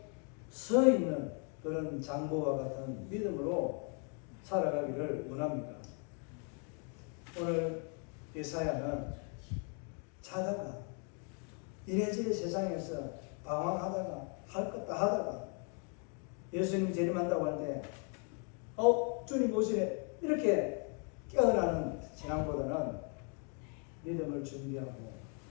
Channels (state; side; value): quieter; right; 39.9 dB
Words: 서 있는 그런 장보와 같은 믿음으로 살아가기를 원합니까? 오늘 예사야는 자다가 이래저래 세상에서 방황하다가 할 것 다 하다가 예수님이 재림한다고 할 때 주님 오시네 이렇게 깨어나는 신앙보다는 믿음을 준비하고